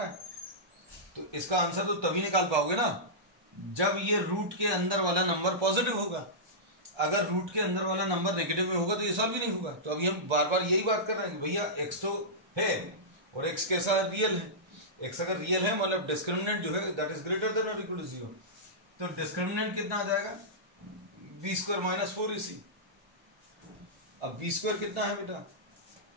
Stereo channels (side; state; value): left; late; 1.3 ms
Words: है, तो इसका आंसर तो तभी निकाल पाओगे ना जब ये रूट के अंदर वाला नंबर पॉजिटिव होगा। अगर रूट के अंदर वाला नंबर नेगेटिव में होगा तो ये सॉल्व ही नहीं होगा। तो अभी हम बार बार यही बात कर रहे हैं कि भैया x तो है और x कैसा है, रियल है। x अगर रियल है मतलब डिस्क्रिमिनेंट जो है दैट इज ग्रेटर देन और इक्वल टू 0। तो डिस्क्रिमिनेंट कितना आ जाएगा, b² - 4ac। अब b² कितना है बेटा,